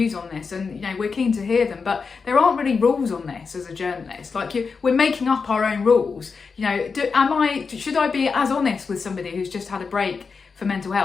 on this, and we're keen to hear them, but there aren't really rules on this as a journalist. Like we're making up our own rules. Should I be as honest with somebody who's just had a break for mental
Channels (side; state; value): right; quieter; 5.1 dB